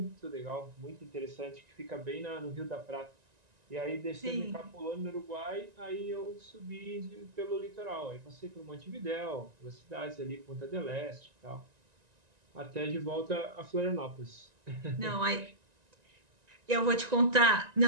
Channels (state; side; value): late; left; 1.9 ms